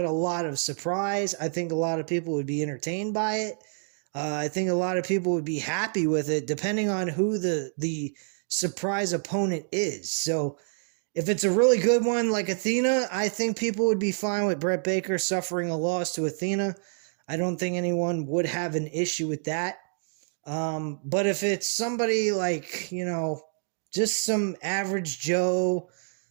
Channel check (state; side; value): silent; left; digital silence